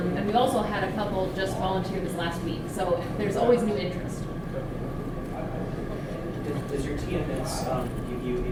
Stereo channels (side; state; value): both; identical; correlation 1.00